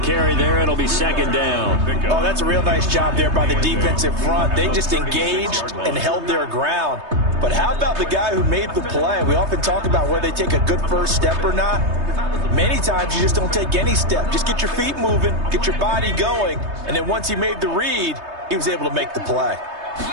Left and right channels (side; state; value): left; late; 3.2 ms